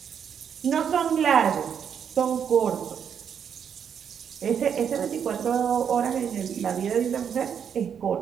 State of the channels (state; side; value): quieter; left; 7.8 dB